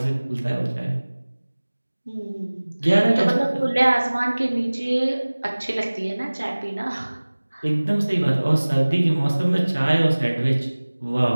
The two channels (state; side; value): inverted; both; correlation -1.00